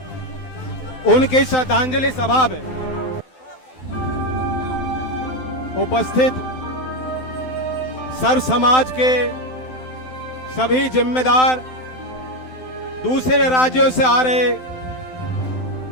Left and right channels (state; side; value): late; right; 12 ms